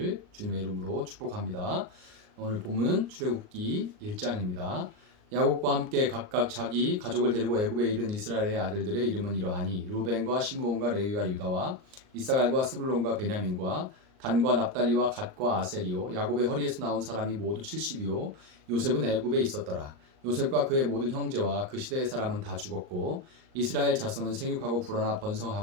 주님의 이름으로 축복합니다. 오늘 본문은 출애굽기 1장입니다. 야곱과 함께 각각 자기 가족을 데리고 애굽에 이른 이스라엘의 아들들의 이름은 이러하니 르우벤과 시므온과 레위와 유다와 이사갈과 스불론과 베냐민과 단과 납달리와 갓과 아셀이요 야곱의 허리에서 나온 사람이 모두 70이요 요셉은 애굽에 있었더라. 요셉과 그의 모든 형제와 그 시대의 사람은 다 죽었고 이스라엘 자손은 생육하고 불어나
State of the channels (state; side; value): late; left; 38 ms